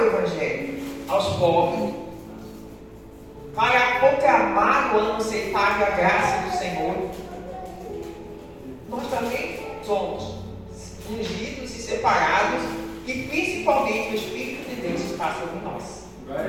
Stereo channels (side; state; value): both; identical; correlation 1.00